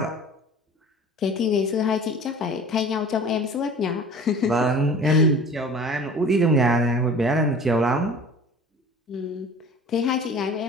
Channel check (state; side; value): normal; both; correlation 0.43